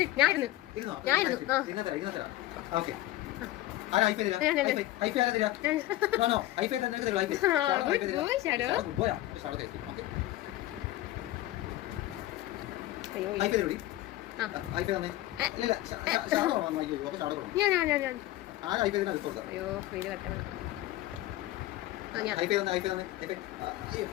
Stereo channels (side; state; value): right; quieter; 15.9 dB